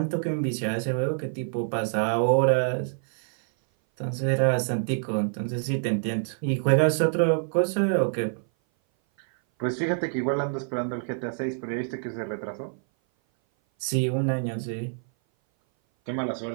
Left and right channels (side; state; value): left; silent; 57 dB below the other